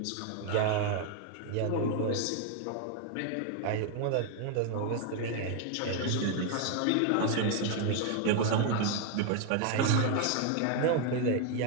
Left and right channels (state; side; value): different; both; correlation 0.01